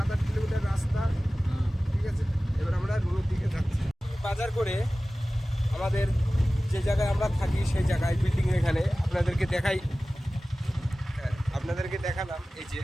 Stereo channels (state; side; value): normal; both; correlation 0.97